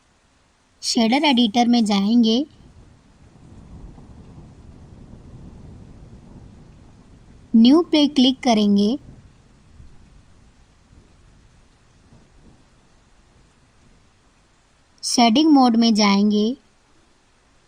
शेडर एडिटर में जाएंगे। न्यू पे क्लिक करेंगे। शेडिंग मोड में जाएंगे।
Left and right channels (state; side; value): identical; both; correlation 1.00